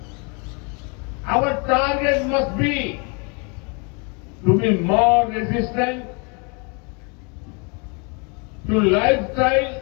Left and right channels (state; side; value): quieter; right; 33.8 dB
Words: Our target must be to be more resistant to lifestyle